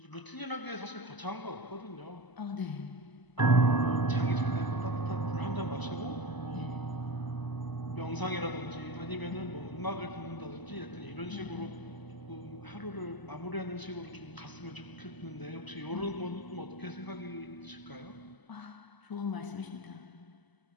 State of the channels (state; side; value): late; right; 1.0 ms